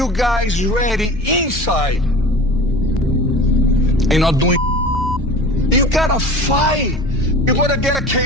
guys ready inside. Ain't not doing. You gotta fight. You gotta get a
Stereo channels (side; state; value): both; normal; correlation 0.38